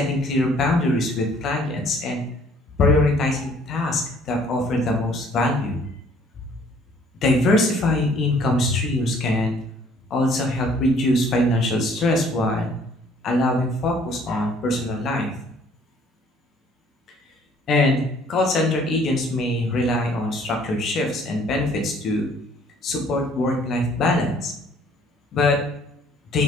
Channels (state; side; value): normal; both; correlation 0.59